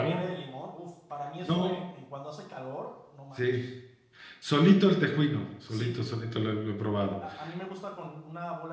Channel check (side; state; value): both; identical; correlation 1.00